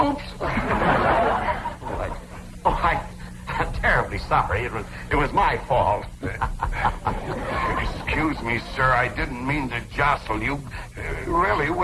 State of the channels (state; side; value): identical; both; correlation 1.00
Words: I'm terribly sorry. It was my fault. Excuse me, sir. I didn't mean to jostle you. Really, it